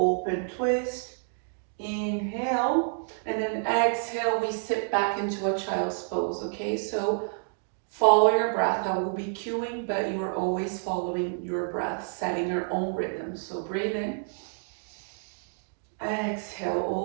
twist. Inhale, and then exhale, we sit back into a child's pose, okay? So follow your breath. I will be cueing, but you are always following your breath, setting your own rhythm. So breathe in. Exhale,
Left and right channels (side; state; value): left; silent; digital silence